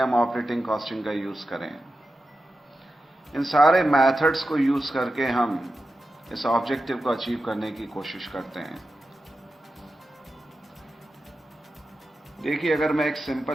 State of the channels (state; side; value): normal; both; correlation 0.91